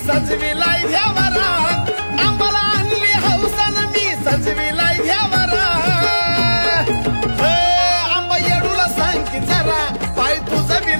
सजविलाय घ्यावरा आंबाला आणली हौसन मी सजविलाय घ्यावरा आंबा येडूला सांग की जरा पाय तुझं बी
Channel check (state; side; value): inverted; both; correlation -1.00